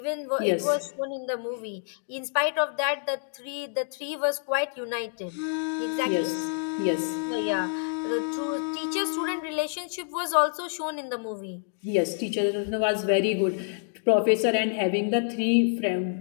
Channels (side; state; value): right; silent; digital silence